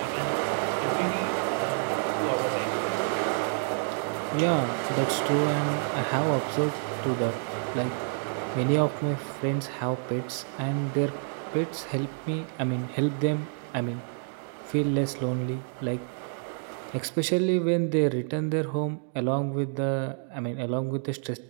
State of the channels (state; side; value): silent; left; 59 dB below the other